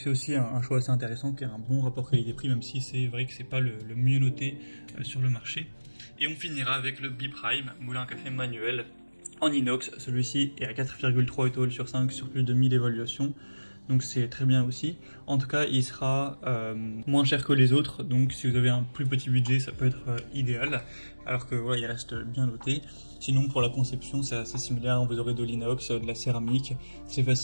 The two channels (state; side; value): inverted; both; correlation -1.00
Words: aussi un choix assez intéressant qui a un bon rapport qualité-prix, même si c'est vrai que c'est pas le mieux noté sur le marché. Et on finira avec le B-Prime moulin à café manuel en inox. Celui-ci est à 4,3 étoiles sur 5 sur plus de 1000 évaluations, donc c'est très bien aussi. En tout cas, il sera moins cher que les autres, donc si vous avez un plus petit budget, ça peut être idéal, alors que voilà, il reste bien noté. Sinon, pour la conception, c'est assez similaire, vous aurez de l'inox, de la céramique, c'est